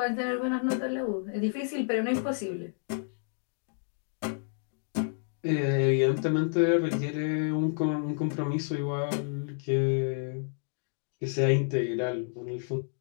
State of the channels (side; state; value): right; silent; digital silence